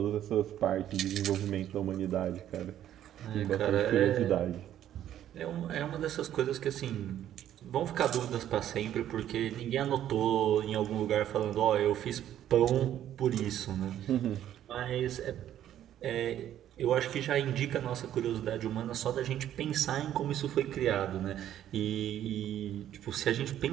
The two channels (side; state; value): left; quieter; 11.4 dB